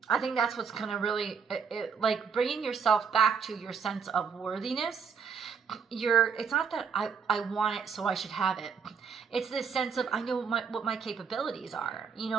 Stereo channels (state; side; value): quieter; left; 6.3 dB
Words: I think that's what's going to really, like bringing yourself back to your sense of worthiness. It's not that I want it, so I should have it. It's this sense of, I know what my capabilities are. You